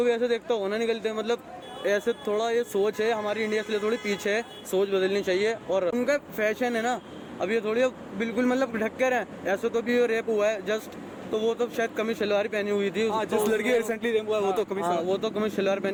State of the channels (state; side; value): identical; both; correlation 1.00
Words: भी ऐसे देखता होगा ना, निकलते। मतलब ऐसे थोड़ा ये सोच है हमारी इंडिया से थोड़ी पीछे है, सोच बदलनी चाहिए। और उनका फैशन है ना, अब ये थोड़ी बिल्कुल मतलब ढक कर है। ऐसे तो भी रेप हुआ है जस्ट, तो वो तो शायद कमीज शलवार पहनी हुई थी। जिस लड़की रिसेंटली रेप हुआ है वो तो कमीज शलवार